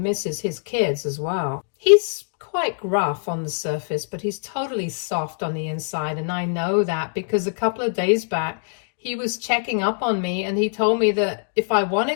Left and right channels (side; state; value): right; silent; digital silence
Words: his kids as well. He's quite rough on the surface, but he's totally soft on the inside. And I know that because a couple of days back, he was checking up on me and he told me that if I